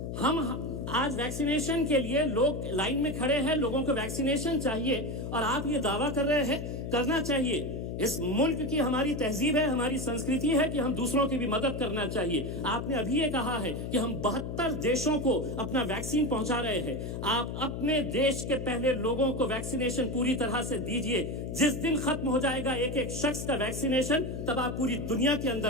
हम आज वैक्सीनेशन के लिए लोग लाइन में खड़े हैं, लोगों को वैक्सीनेशन चाहिए और आप ये दावा कर रहे हैं करना चाहिए। इस मुल्क की हमारी तहजीब है, हमारी संस्कृति है कि हम दूसरों की भी मदद करना चाहिए। आपने अभी ये कहा है कि हम 72 देशों को अपना वैक्सीन पहुंचा रहे हैं। आप अपने देश के पहले लोगों को वैक्सीनेशन पूरी तरह से दीजिए। जिस दिन खत्म हो जाएगा एक एक शख्स का वैक्सीनेशन, तब आप पूरी दुनिया के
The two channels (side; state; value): left; noise; hum, 5 dB below the sound